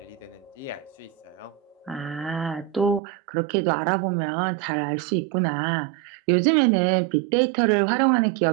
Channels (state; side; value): drops out; left; at 3.0 s